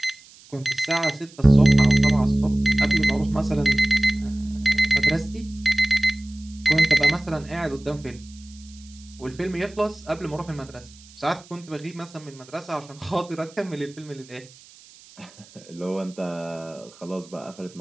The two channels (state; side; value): noise; right; hiss, 23 dB below the sound